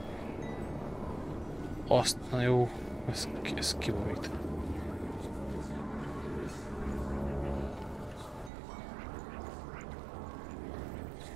Azt, na jó, ez kiborít.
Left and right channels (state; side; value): drops out; left; at 8.5 s